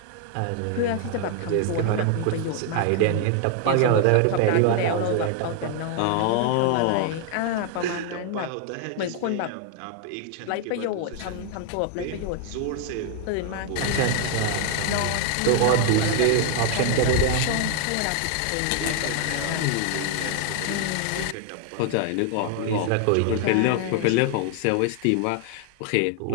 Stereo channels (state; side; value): different; both; correlation 0.00